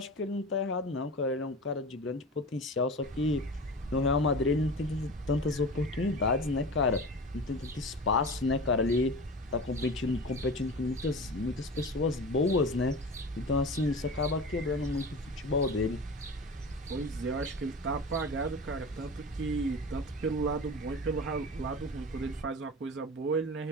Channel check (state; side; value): normal; both; correlation 0.33